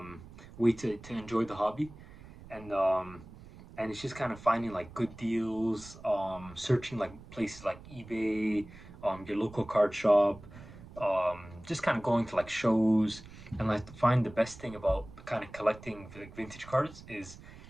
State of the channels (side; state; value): right; noise; rumble, 18 dB below the sound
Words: way to enjoy the hobby, and um, and it's just kind of finding like good deals, searching like places like eBay, your local card shop, just kind of going to like shows and like to find the best thing about kind of collecting like vintage cards is